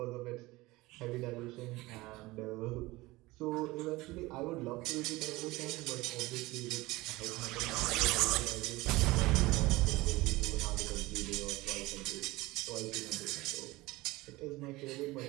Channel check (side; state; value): left; quieter; 20.5 dB